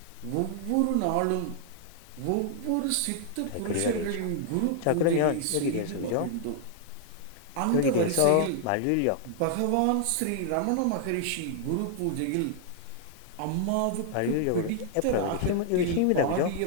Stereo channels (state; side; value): different; both; correlation 0.00